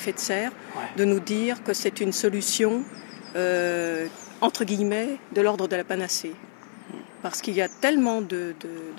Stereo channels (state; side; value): silent; right; 56 dB below the other